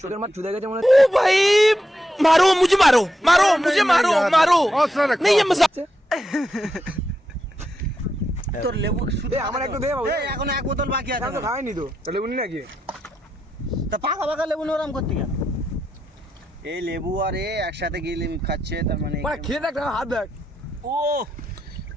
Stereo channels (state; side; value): normal; both; correlation 0.84